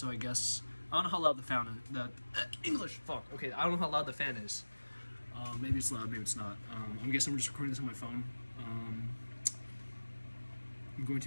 I guess I don't know how loud the fan is. English, fuck. Okay, I don't know how loud the fan is. Maybe it's loud, maybe it's not. I guess I'm just recording this on my phone. I'm going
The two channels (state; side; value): inverted; both; correlation -1.00